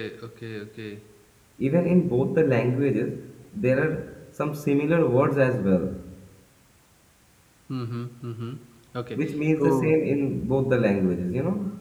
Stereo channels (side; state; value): both; identical; correlation 1.00